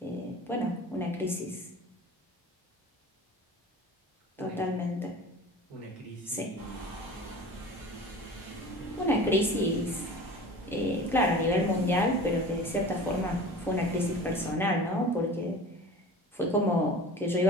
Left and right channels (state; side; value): normal; both; correlation 0.38